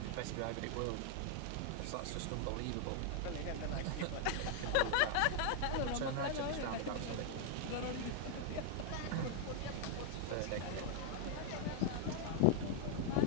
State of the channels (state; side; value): different; both; correlation 0.00